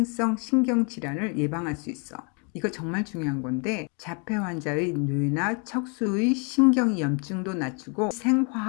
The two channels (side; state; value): right; quieter; 35.9 dB